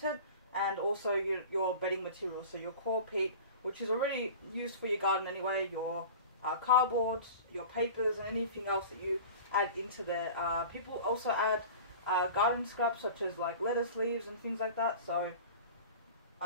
and also your bedding materials, so your core peat, which is already used for your garden anyway, your cardboard, your papers, and anything else that you add into there. People also add garden scraps such as like lettuce leaves and things like that, so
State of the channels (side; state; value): both; inverted; correlation -0.38